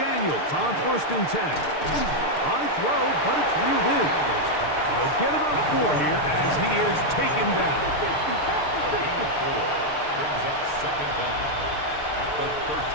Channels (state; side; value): late; right; 6.7 ms